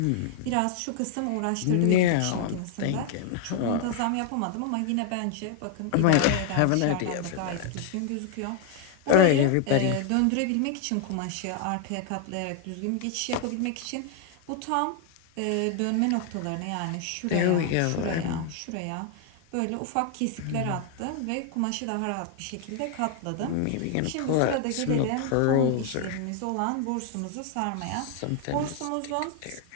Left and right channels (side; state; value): both; different; correlation 0.00